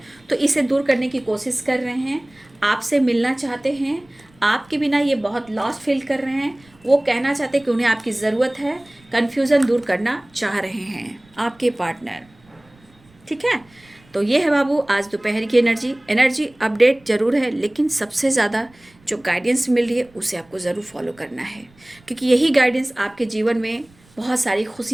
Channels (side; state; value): right; noise; rumble, 30 dB below the sound